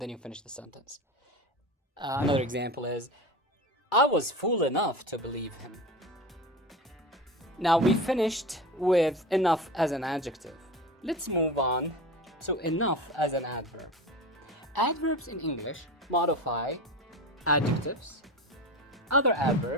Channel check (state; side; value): normal; both; correlation 0.29